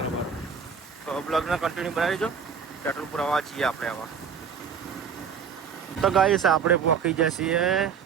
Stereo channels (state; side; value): quieter; left; 6.7 dB